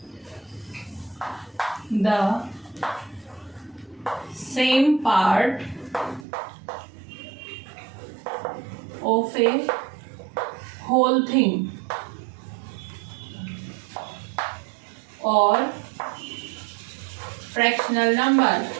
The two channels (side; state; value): left; drops out; at 6.2 s